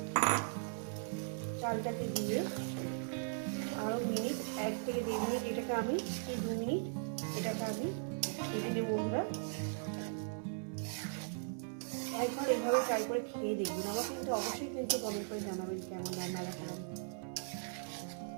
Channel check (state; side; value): silent; left; 52 dB below the other